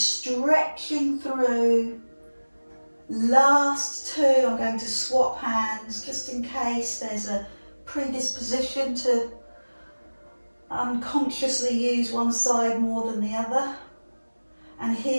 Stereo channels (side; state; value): both; inverted; correlation -1.00